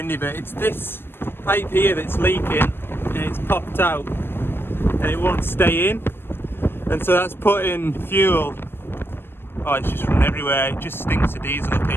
but it's this pipe here that's leaking and it's popped out and it won't stay in, and so that's putting fuel, oh, it's just running everywhere. It just stinks of diesel up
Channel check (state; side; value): late; right; 0.10 ms